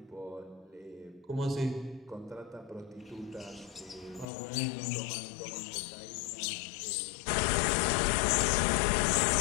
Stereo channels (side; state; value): right; drops out; at 4.2 s